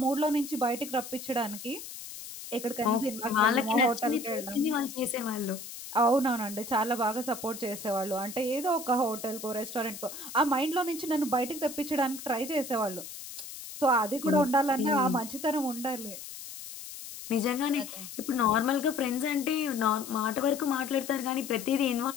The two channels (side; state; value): left; noise; hiss, 11 dB below the sound